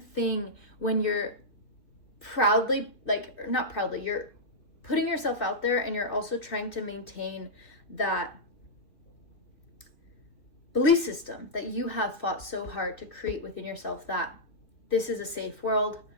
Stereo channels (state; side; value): late; right; 2.9 ms